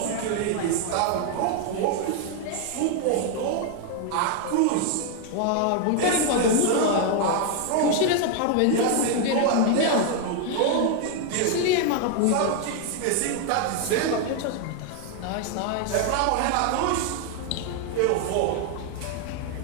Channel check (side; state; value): both; different; correlation 0.00